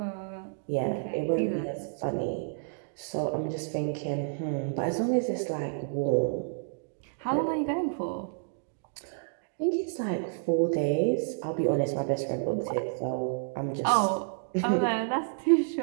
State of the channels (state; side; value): silent; left; digital silence